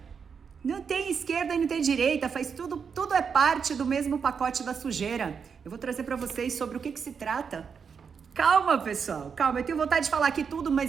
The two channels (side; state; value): left; quieter; 6.3 dB